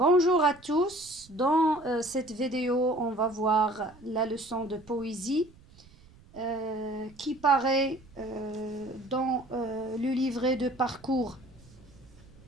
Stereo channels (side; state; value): right; noise; rumble, 24 dB below the sound